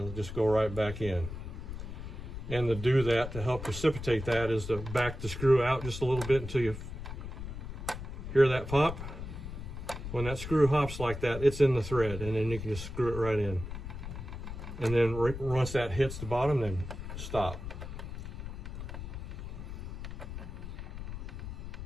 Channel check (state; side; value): noise; left; rumble, 8 dB below the sound